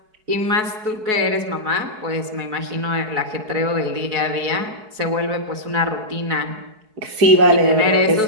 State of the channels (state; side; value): late; left; 4.7 ms